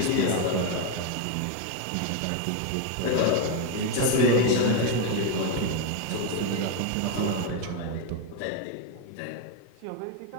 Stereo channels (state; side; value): different; both; correlation 0.01